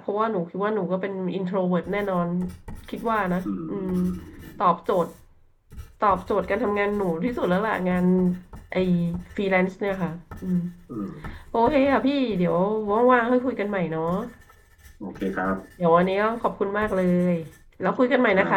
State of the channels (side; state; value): both; identical; correlation 1.00